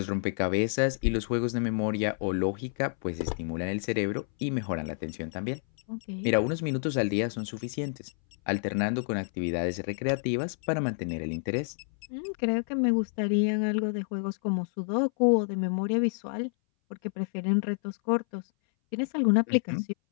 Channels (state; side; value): silent; right; 59 dB below the other